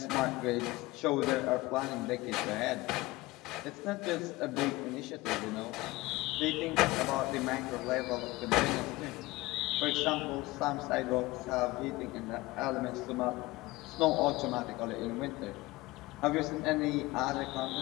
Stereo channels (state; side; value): quieter; right; 20.4 dB